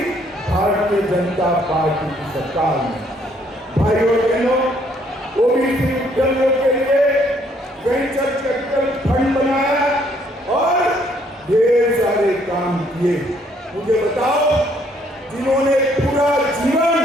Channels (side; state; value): both; normal; correlation 0.66